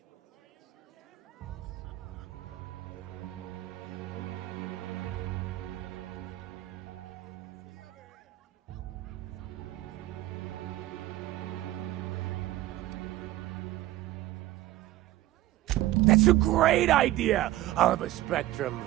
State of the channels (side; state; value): left; quieter; 15.7 dB